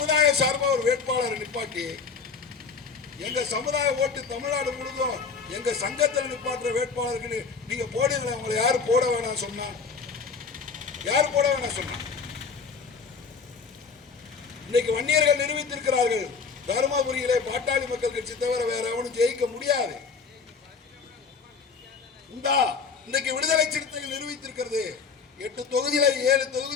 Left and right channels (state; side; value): quieter; right; 5.3 dB